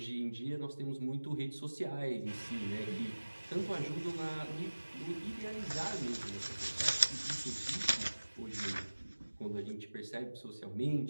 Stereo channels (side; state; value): both; inverted; correlation -1.00